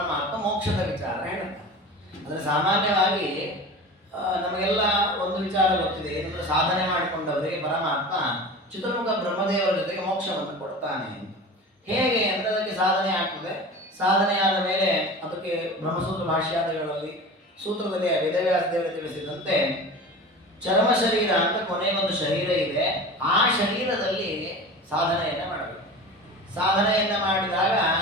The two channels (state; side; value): normal; both; correlation 0.34